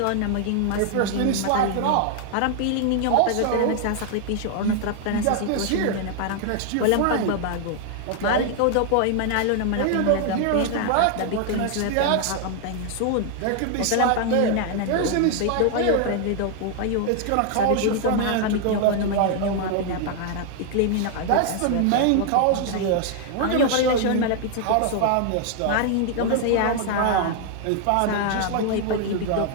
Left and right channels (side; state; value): both; different; correlation 0.00